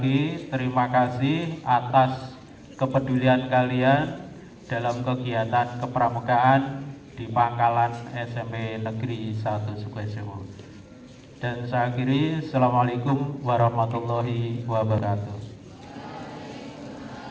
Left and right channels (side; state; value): both; identical; correlation 1.00